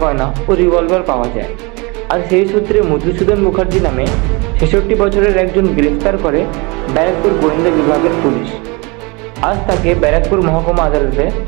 গয়না ও রিভলভার পাওয়া যায়। আর সেই সূত্রে মধুসূদন মুখার্জি নামে ৬৬ বছরের একজন গ্রেফতার করে ব্যারাকপুর গোয়েন্দা বিভাগের পুলিশ। আজ তাকে ব্যারাকপুর মহকুমা আদালতে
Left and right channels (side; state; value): left; quieter; 27.7 dB